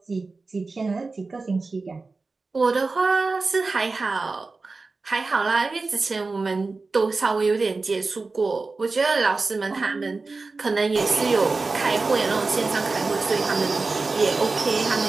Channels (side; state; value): left; quieter; 3.8 dB